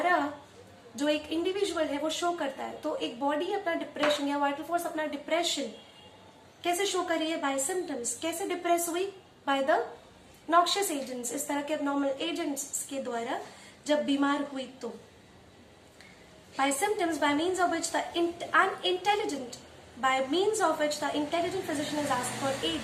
जो एक इंडिविजुअल है वो शो करता है। तो एक बॉडी अपना डिप्रेशन या वाइटल फोर्स अपना डिप्रेशन कैसे शो कर रही है? By symptoms. कैसे डिप्रेस हुई? बाय द नॉक्शियस एजेंट्स, इस तरह के एबनॉर्मल एजेंट्स के द्वारा जब बीमार हुई तो। By symptoms by means of which the intelligent physician is asked for aid,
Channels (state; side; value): identical; both; correlation 1.00